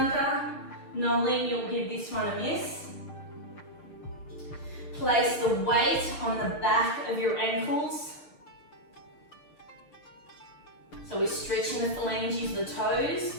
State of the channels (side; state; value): right; late; 6.8 ms